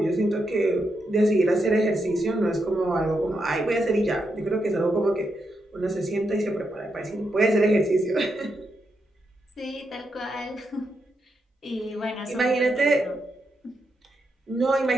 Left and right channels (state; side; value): normal; both; correlation 0.83